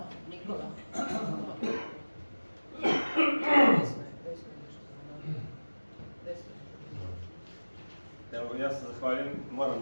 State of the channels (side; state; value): both; inverted; correlation -1.00